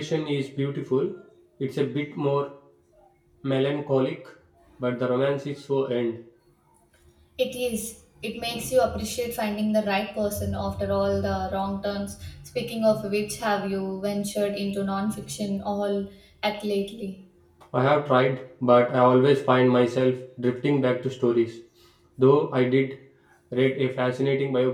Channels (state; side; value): identical; both; correlation 1.00